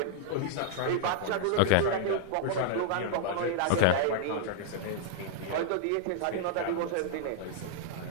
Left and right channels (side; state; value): both; different; correlation -0.02